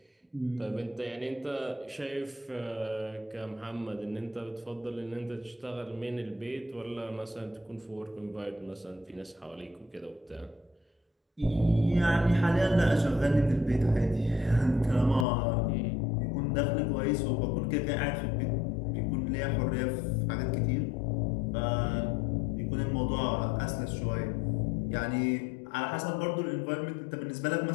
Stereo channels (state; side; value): drops out; right; at 15.2 s